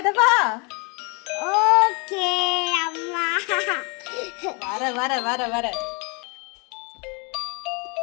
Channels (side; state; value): right; quieter; 31.9 dB